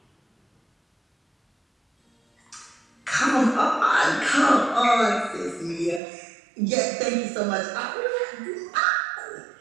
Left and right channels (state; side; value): drops out; left; at 6.0 s